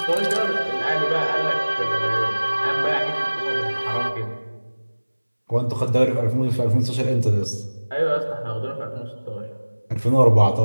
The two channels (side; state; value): both; inverted; correlation -1.00